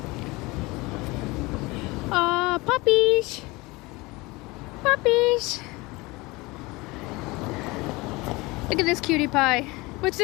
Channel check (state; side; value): quieter; right; 23.2 dB